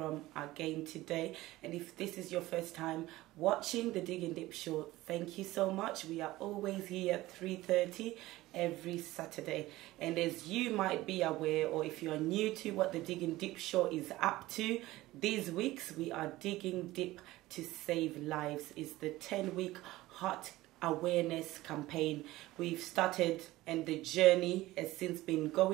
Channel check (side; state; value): left; quieter; 17.6 dB